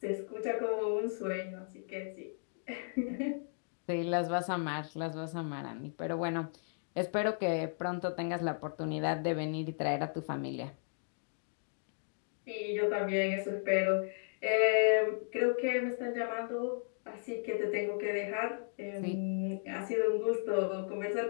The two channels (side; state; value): right; silent; digital silence